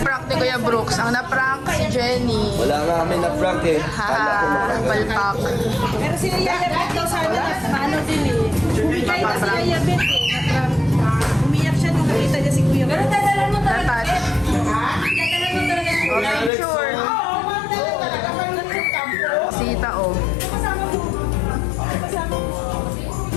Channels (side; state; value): right; drops out; at 16.5 s